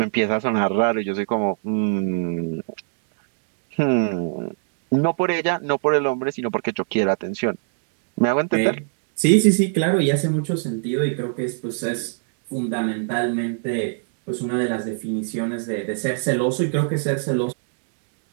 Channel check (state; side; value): silent; left; digital silence